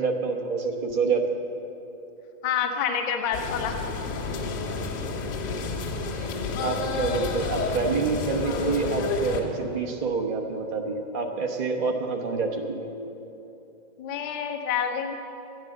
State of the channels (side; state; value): right; late; 2.0 ms